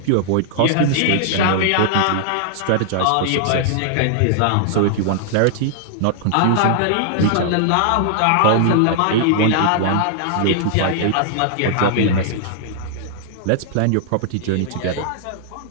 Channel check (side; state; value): both; different; correlation -0.01